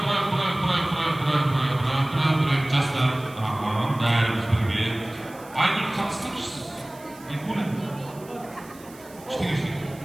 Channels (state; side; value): noise; right; hiss, 22 dB below the sound